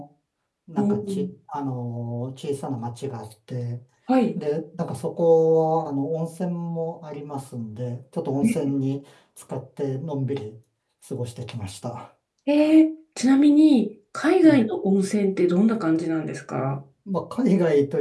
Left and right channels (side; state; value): both; identical; correlation 1.00